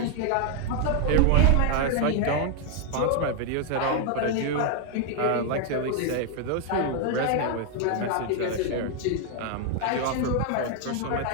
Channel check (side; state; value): both; different; correlation 0.00